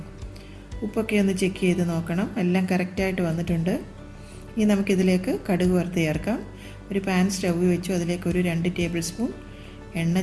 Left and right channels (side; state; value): both; identical; correlation 1.00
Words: ഉപ്പൊക്കെ ഒന്ന് ചെക്ക് ചെയ്ത് നോക്കണം. എല്ലാം കറക്റ്റായിട്ട് വന്നിട്ടുണ്ട്. ഇനി നമുക്കിതിലേക്ക് കടുക് വറുത്ത് ചേർക്കാം. ഒരു പാൻ സ്റ്റൗ വെച്ചു. അതിലേക്ക് ഒരു 2 ടേബിൾ സ്പൂൺ എണ്ണ